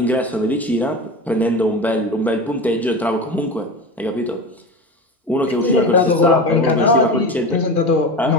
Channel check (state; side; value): normal; both; correlation 0.27